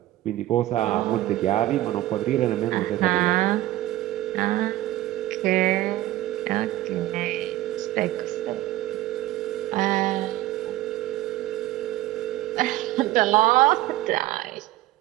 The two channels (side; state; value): left; quieter; 15.8 dB